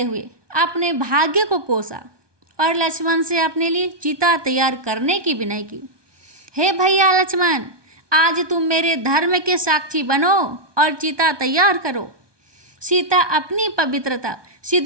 हुए अपने भाग्य को कोसा और लक्ष्मण से अपने लिए चिता तैयार करने की विनय की। हे भैया लक्ष्मण, आज तुम मेरे धर्म के साक्षी बनो और चिता तैयार करो। सीता अपनी पवित्रता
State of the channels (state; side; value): late; left; 1.2 ms